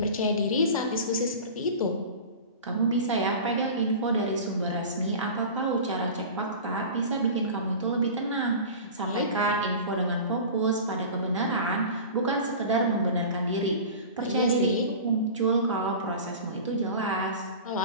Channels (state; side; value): inverted; both; correlation -0.34